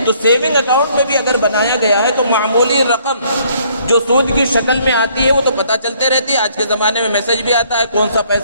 تو سیونگ اکاؤنٹ میں بھی اگر بنایا گیا ہے تو معمولی رقم جو سود کی شکل میں آتی ہے وہ تو پتہ چلتے رہتی ہے. آج کے زمانے میں میسج بھی آتا ہے کون سا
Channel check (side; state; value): both; inverted; correlation -0.64